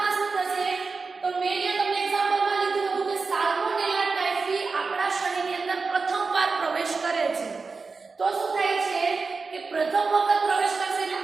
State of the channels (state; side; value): quieter; left; 4.4 dB